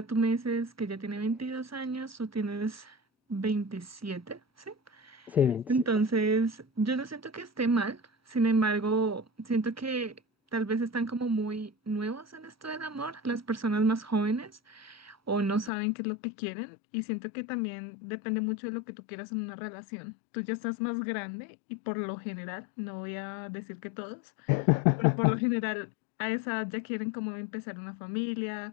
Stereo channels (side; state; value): right; drops out; at 15.7 s